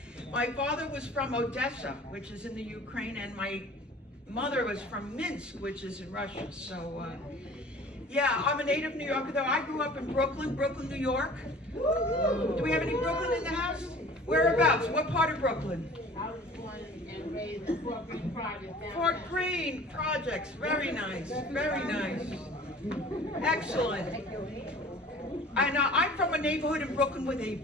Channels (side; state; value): both; normal; correlation 0.46